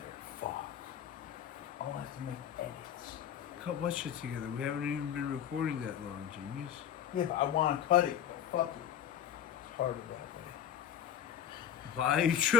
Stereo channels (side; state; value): right; quieter; 8.8 dB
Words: Fuck. I'll have to make edits. Cut what shit together? We haven't even been recording that long, genius. Yeah, but I want to cut it. But fuck it. It's harder that way. Why are you